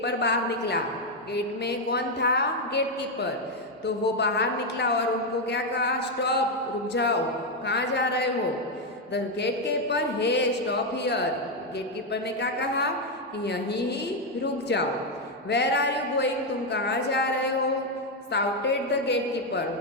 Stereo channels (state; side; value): normal; both; correlation 0.04